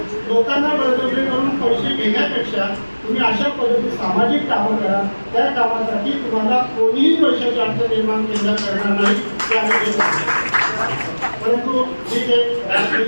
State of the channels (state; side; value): inverted; both; correlation -1.00